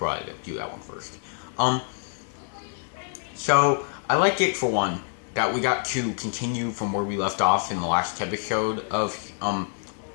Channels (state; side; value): silent; right; 61 dB below the other